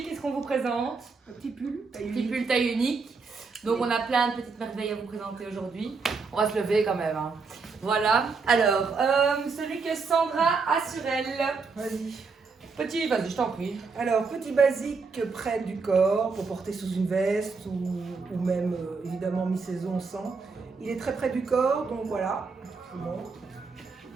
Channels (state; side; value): quieter; left; 4.7 dB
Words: qu'est-ce qu'on vous présente? Un petit pull. Petit pull taille unique. Donc on a plein de petites merveilles à vous présenter aujourd'hui. On va se lever quand même. Hein. Voilà. Alors, celui que Sandra a sur elle. Vas-y. Petit, vas-y, je t'en prie. Alors, petit basique près du corps pour porter sous une veste ou même évidemment mi-saison sans. Il est très près du corps, donc voilà. Bon.